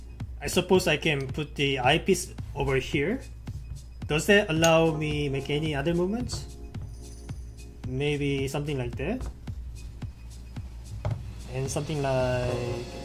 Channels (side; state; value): both; identical; correlation 1.00